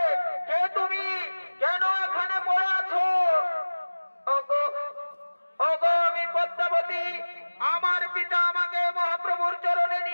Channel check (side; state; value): both; inverted; correlation -1.00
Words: কে তুমি? কেন এখানে পড়ে আছো? ওগো ওগো, আমি পদ্মাবতী। আমার পিতা আমাকে মহাপ্রভুর চরণে